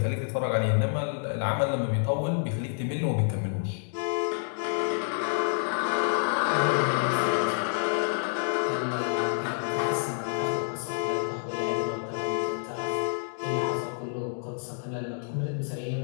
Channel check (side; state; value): right; silent; digital silence